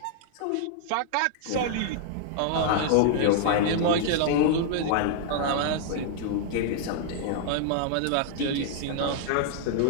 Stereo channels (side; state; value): both; different; correlation -0.01